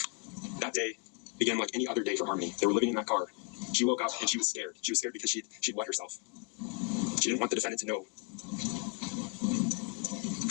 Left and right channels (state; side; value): quieter; right; 36.8 dB